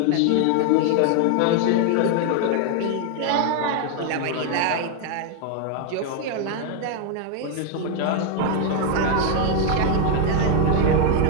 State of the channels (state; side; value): different; both; correlation 0.00